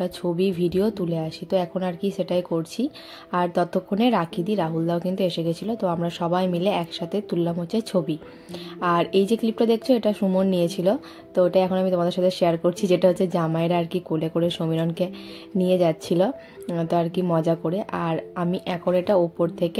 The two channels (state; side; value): identical; both; correlation 1.00